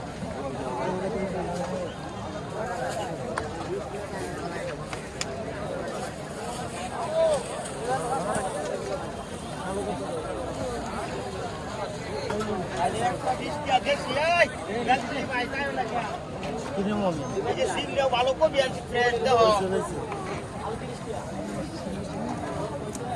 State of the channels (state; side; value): identical; both; correlation 1.00